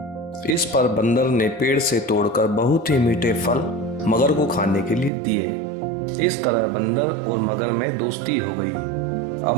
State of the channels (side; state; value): left; drops out; at 5.1 s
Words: इस पर बंदर ने पेड़ से तोड़कर बहुत ही मीठे फल मगर को खाने के लिए दिए। इस तरह बंदर और मगर में दोस्ती हो गई। अब